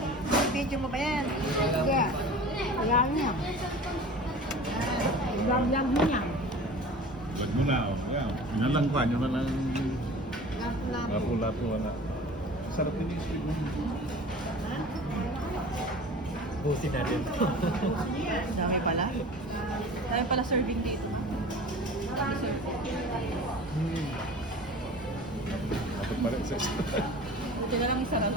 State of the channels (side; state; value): both; normal; correlation 0.40